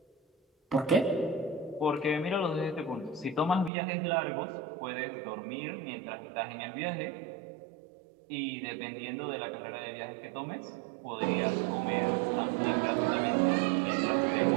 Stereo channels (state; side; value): drops out; left; at 3.7 s